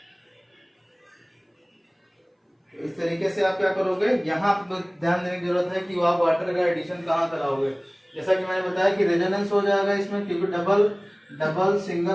इस तरीके से आप क्या करोगे, यहाँ ध्यान देने की जरूरत है कि आप वाटर का एडिशन कहाँ कराओगे। जैसा कि मैंने बताया कि रेजोनेंस हो जाएगा इसमें, क्योंकि डबल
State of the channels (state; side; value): identical; both; correlation 1.00